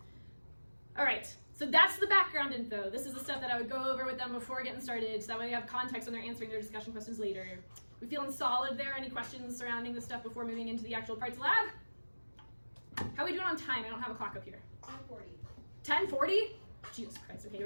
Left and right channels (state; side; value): inverted; both; correlation -1.00